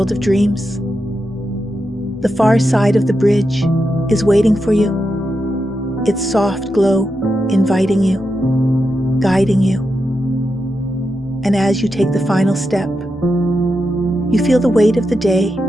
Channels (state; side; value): normal; both; correlation 0.87